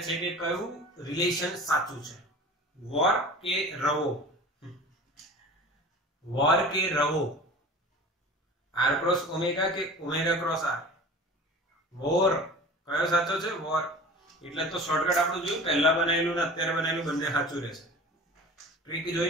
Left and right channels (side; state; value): both; normal; correlation 0.39